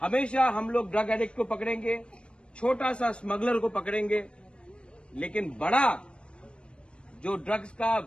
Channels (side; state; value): right; late; 0.057 ms